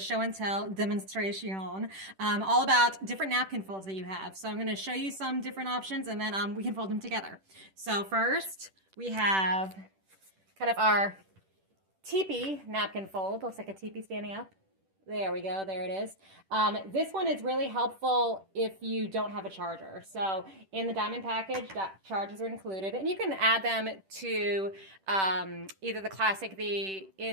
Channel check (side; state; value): left; late; 10 ms